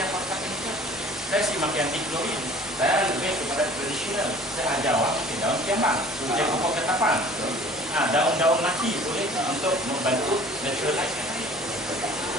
yang pakai chemical. Saya sih makin anti klorin. Saya lebih kepada tradisional. Saya ajar awak pakai daun kiambang, pakai pokok ketapang. Daun-daun mati boleh untuk membantu naturalize.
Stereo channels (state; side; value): normal; both; correlation 0.48